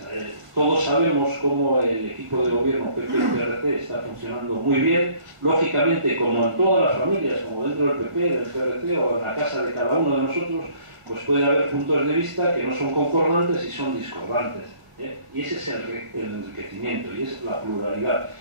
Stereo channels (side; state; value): left; late; 1.5 ms